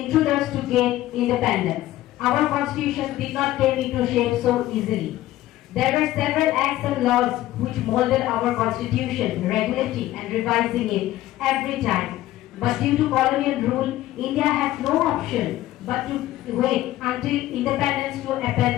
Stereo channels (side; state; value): right; quieter; 15.1 dB